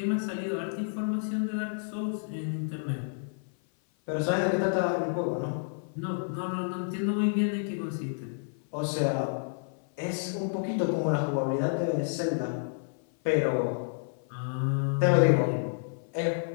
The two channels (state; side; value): silent; right; 55 dB below the other